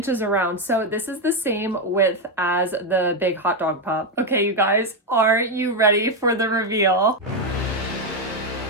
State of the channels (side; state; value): both; normal; correlation 0.06